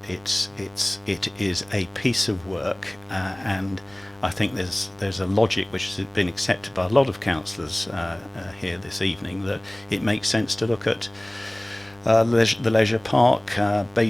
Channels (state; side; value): noise; right; rumble, 29 dB below the sound